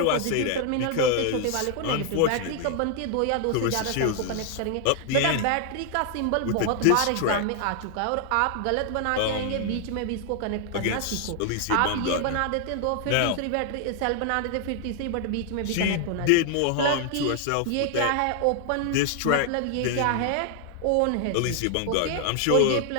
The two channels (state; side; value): different; both; correlation 0.00